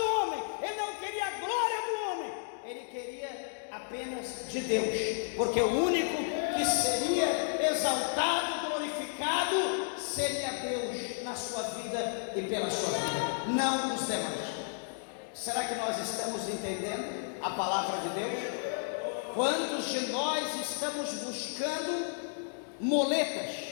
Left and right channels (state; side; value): silent; right; digital silence